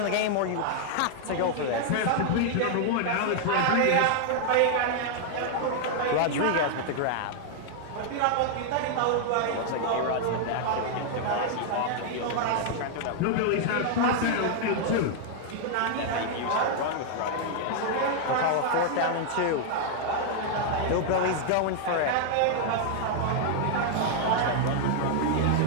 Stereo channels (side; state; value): both; different; correlation 0.00